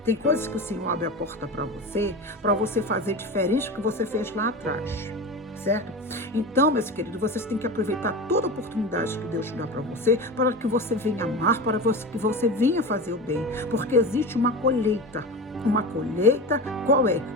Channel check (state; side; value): normal; both; correlation 0.26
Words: Tem coisas que o Senhor abre a porta para você fazer diferente do que você fez lá atrás, certo? Então, meus queridos, vocês têm que aproveitar toda a oportunidade que Deus te dá para que você venha amar, para que você venha fazer o bem, porque existe uma colheita. Uma colheita, qual é?